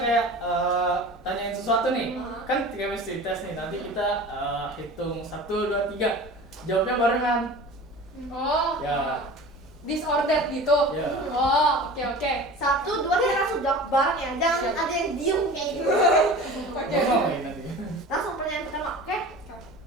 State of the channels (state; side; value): normal; both; correlation 0.37